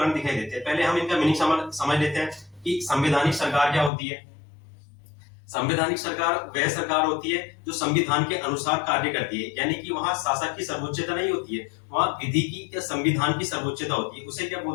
दिखाई देते हैं। पहले हम इनका मीनिंग समझ लेते हैं कि संवैधानिक सरकार क्या होती है। संवैधानिक सरकार वह सरकार होती है जो संविधान के अनुसार कार्य करती है, यानी कि वहां शासक की सर्वोच्चता नहीं होती है, वहां विधि की या संविधान की सर्वोच्चता होती है। उसे क्या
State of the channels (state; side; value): drops out; right; at 3.9 s